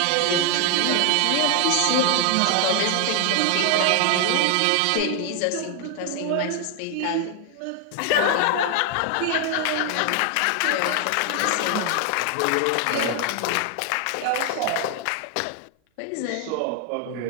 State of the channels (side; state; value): both; different; correlation 0.00